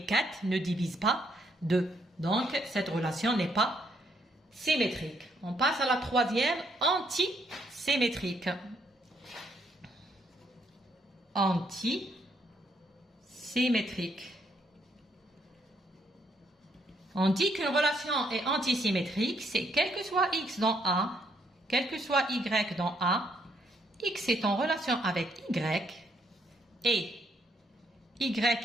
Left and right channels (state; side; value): normal; both; correlation 0.72